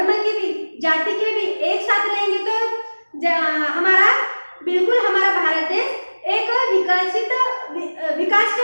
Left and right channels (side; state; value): both; inverted; correlation -1.00